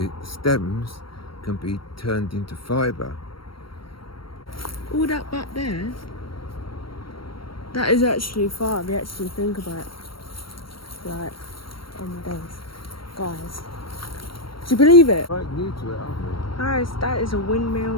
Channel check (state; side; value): late; right; 0.74 ms